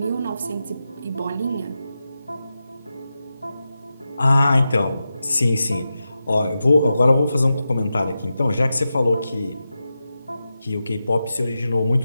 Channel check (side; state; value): both; inverted; correlation -0.91